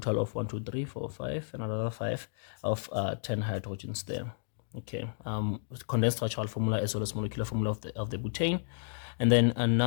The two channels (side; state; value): right; silent; digital silence